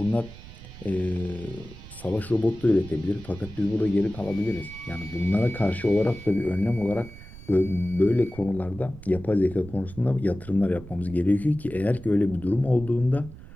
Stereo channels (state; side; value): noise; right; rumble, 16 dB below the sound